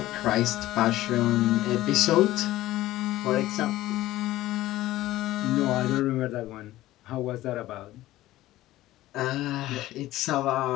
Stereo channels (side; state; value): right; quieter; 15.8 dB